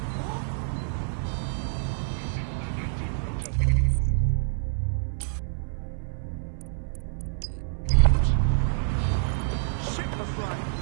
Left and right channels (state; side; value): silent; left; 60 dB below the other